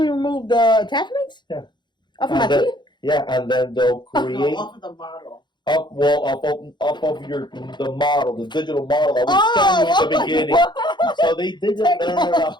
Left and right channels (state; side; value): late; right; 0.22 ms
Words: remove the attachments? Yeah. Off of my teeth? Yeah, and then they'll create off of the model. Up of the model, the digital model that we scanned you at the beginning. So they did it.